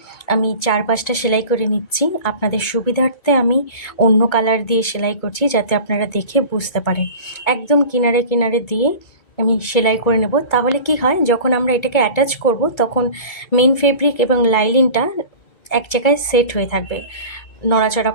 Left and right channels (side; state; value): right; late; 2.2 ms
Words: আমি 4-5টা সেলাই করে নিচ্ছি। আপনাদের সুবিধার্থে আমি অন্য কালার দিয়ে সেলাই করছি, যাতে আপনারা দেখে বুঝতে পারেন। একদম কিনারে কিনারে দিয়ে আমি সেলাই করে নেব। তাহলে কি হয়, যখন আমরা এটাকে অ্যাটাচ করব তখন মেন ফেব্রিক এবং লাইলিনটা এক জায়গায় সেট হয়ে থাকবে, নড়াচড়া